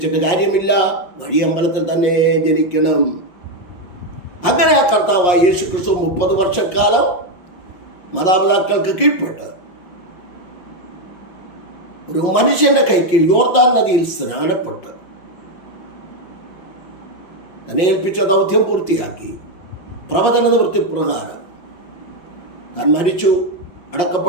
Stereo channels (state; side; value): late; right; 5.6 ms